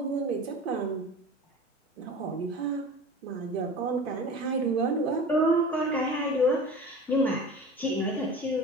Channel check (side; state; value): both; normal; correlation 0.36